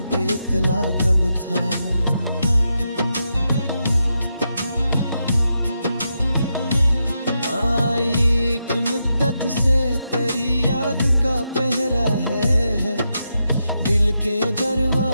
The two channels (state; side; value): inverted; both; correlation -0.85